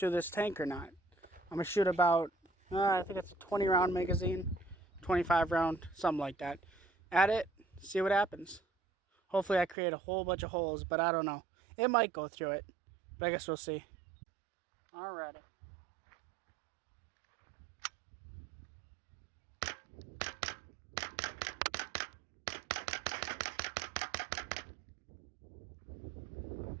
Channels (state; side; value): drops out; left; at 9.8 s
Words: this tank or not. I'm going to shoot about, I think it's a 20 round magazine, 25 round, something like that. At it, see what happens. Hopefully I create a whole bunch of holes, but I don't know. It might go through it, but I guess we'll see. Alrighty.